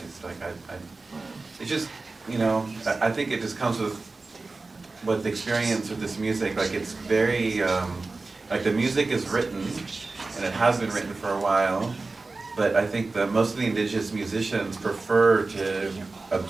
Like it's just, I think it just comes with the experience of this music. Like it's very, like the music is written, and it has been written for a while, but I think that most of the indigenous musicians prefer to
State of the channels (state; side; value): quieter; left; 3.6 dB